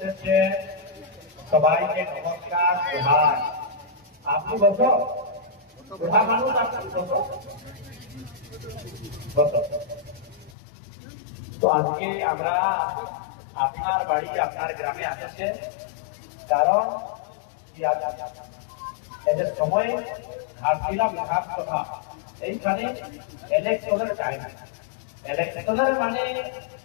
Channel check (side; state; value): right; drops out; at 10.5 s